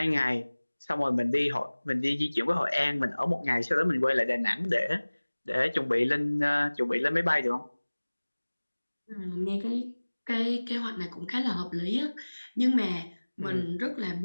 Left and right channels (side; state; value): both; inverted; correlation -1.00